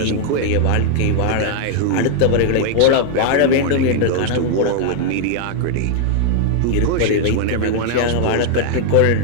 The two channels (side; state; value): both; different; correlation 0.00